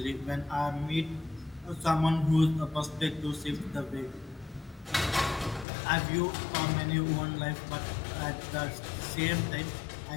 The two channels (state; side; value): drops out; right; at 5.7 s